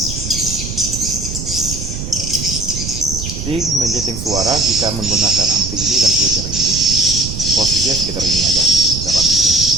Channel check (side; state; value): right; noise; rumble, 7 dB below the sound